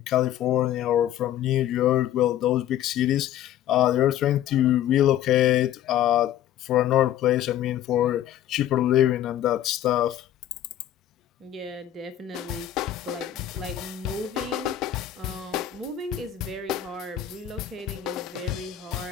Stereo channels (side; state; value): right; quieter; 11.6 dB